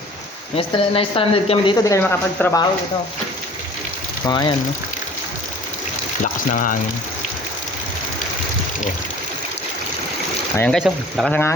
Na-stranded kami dito, di kami makapagtrabaho dito. Mga yan, no? Lakas ng hangin. Oh. Ayan guys, oh. Lakas ng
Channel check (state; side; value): normal; both; correlation 0.48